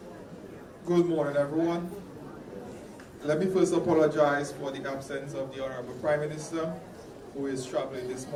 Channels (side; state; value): both; identical; correlation 1.00